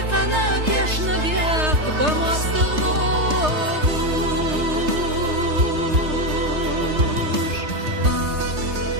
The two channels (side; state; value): left; late; 3.3 ms